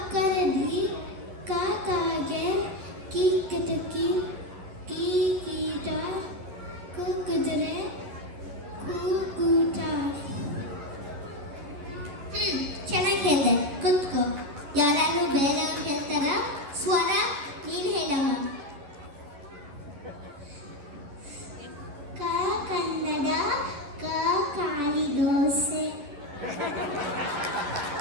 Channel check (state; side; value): late; left; 11 ms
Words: ಕಾಕಾಗೆ ಕೀಕಟಕಿ ಕೀಕೀಟ ಕುಕ್ಕುದರೆ ಕೂಕೂಟ. ಚೆನ್ನಾಗಿ ಹೇಳಿದೆ, ಕುತ್ಕೋ. ಯಾರು ಬೇರೆಯವ್ರು ಹೇಳ್ತಾರ? ಸ್ವರ, ನೀನು ಹೇಳಮ್ಮ. ಕ ಕನ್ನಡ, ಕ ಕಾಳಿ ದೋಸೆ.